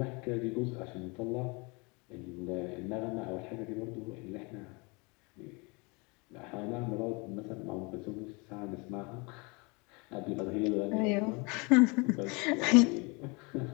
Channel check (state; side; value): quieter; right; 29.2 dB